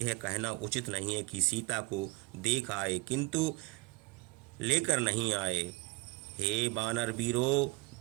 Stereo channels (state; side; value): quieter; left; 22.8 dB